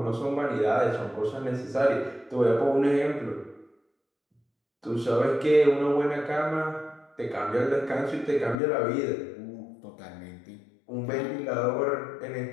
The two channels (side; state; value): right; drops out; at 8.6 s